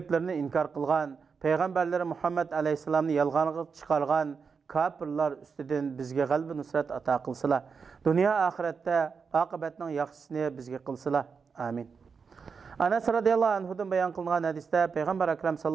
inkor qilgan, payg'ambarlari Muhammad alayhisalomni yolg'onga chiqargan kafirlar ustidan bizga g'alaba nusrat ato qilsalar, dunyo oxiratda oqibatning yaxshisini bizga qilsalar. Amin. Anas radhiyallohu anhudan bayon qilingan hadisda Payg'ambar akram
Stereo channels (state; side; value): quieter; left; 5.6 dB